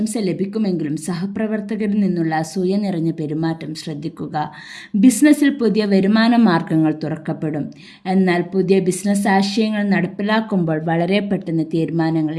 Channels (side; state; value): both; identical; correlation 1.00